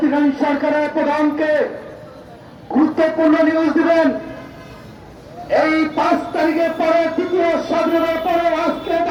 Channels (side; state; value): both; identical; correlation 1.00